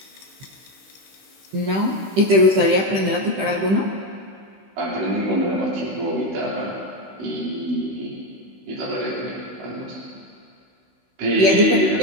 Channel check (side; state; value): left; late; 16 ms